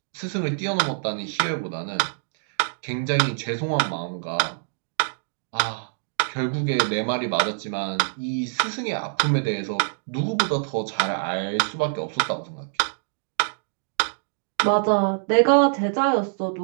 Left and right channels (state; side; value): silent; left; digital silence